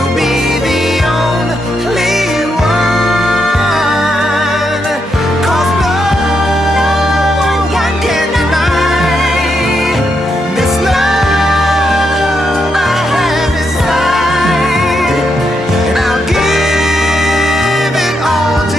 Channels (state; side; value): normal; both; correlation 0.81